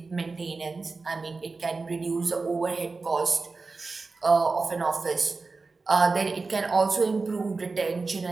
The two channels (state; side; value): quieter; left; 3.9 dB